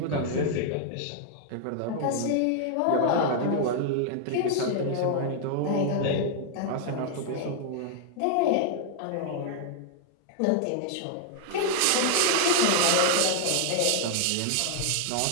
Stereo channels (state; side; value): different; both; correlation 0.00